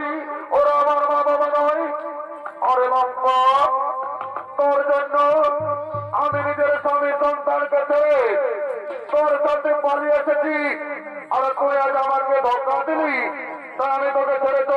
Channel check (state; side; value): identical; both; correlation 1.00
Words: ওরা আমার মা বাবা নয়। আরে লম্বা, তোর জন্য আমি নিজের স্বামী সন্তানকে ছেড়ে তোর সাথে পালিয়ে এসেছি, আর তুই আজ আমাকে ধোকা দিলি, তাই আমি তোকে ছেড়ে